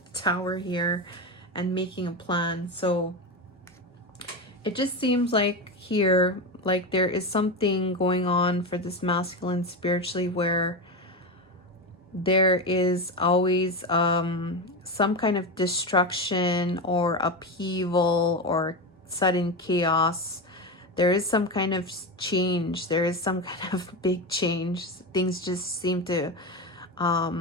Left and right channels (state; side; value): normal; both; correlation 0.17